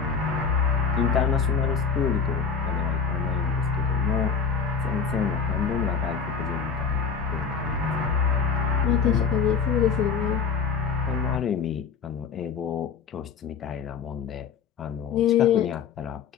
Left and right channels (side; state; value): right; quieter; 6.0 dB